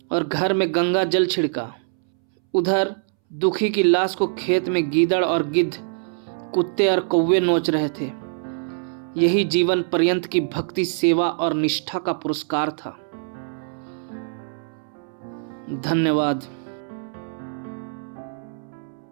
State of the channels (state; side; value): silent; left; 63 dB below the other